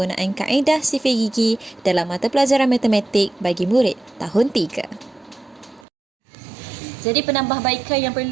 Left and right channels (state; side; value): drops out; left; at 5.9 s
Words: kaedah sifir gigi dalam mata pelajaran matematik bagi murid tahun 3. Jadi penambahbaikan yang